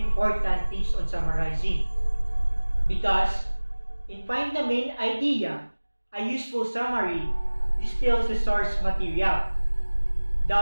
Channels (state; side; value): inverted; both; correlation -1.00